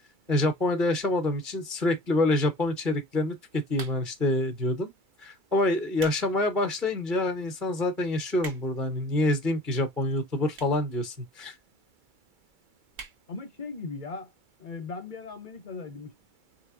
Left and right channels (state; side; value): late; left; 2.3 ms